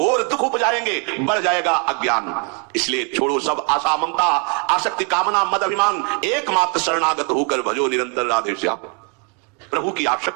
दुख उपजाएंगे, बढ़ जाएगा अज्ञान। इसलिए छोड़ो सब आशा ममता आसक्ति कामना मद अभिमान, एकमात्र शरणागत होकर भजो निरंतर राधे श्याम। प्रभु की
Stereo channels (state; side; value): quieter; left; 35.7 dB